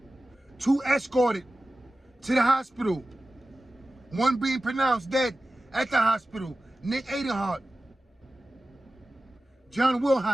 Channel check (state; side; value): normal; both; correlation 0.95